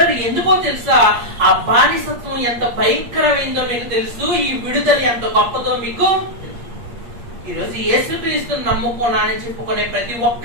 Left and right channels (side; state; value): left; late; 8.5 ms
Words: ఎందుకో తెలుసా? ఆ బానిసత్వం ఎంత భయంకరమైందో మీకు తెలుసు. ఈ విడుదల ఎంత గొప్పదో మీకు. ఈరోజు యేసుక్రీస్తుని నమ్ముకున్నానని చెప్పుకునే ప్రతి